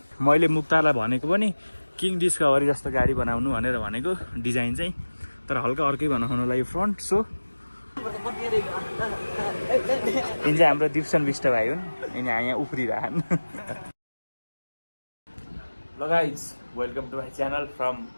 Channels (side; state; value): both; inverted; correlation -1.00